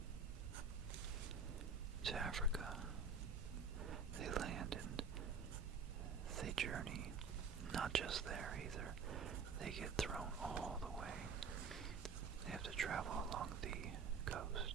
to Africa. They land and they journey, not just there either, they get thrown all the way. They have to travel along the coast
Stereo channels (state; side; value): quieter; left; 4.9 dB